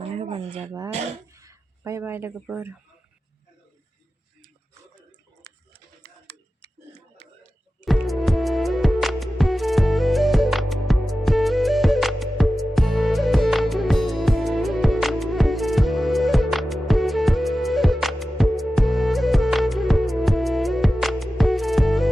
होबानो जाबाय बाय बाय लोगोफोर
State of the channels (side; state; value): both; normal; correlation 0.94